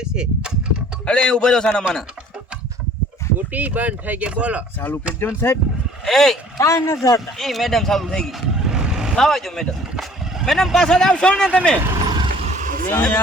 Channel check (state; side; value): normal; both; correlation 0.53